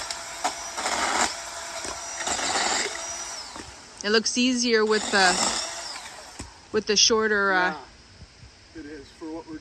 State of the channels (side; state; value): both; identical; correlation 1.00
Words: It looks easier with the shorter. Yeah, it is for what we're